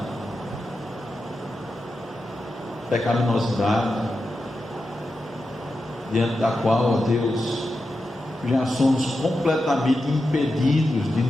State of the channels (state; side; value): normal; both; correlation 0.89